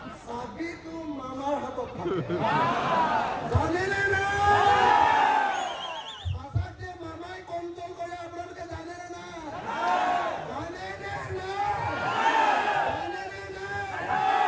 চাবিটো মামাৰ হাতত থাকে জানেনে না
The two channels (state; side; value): identical; both; correlation 1.00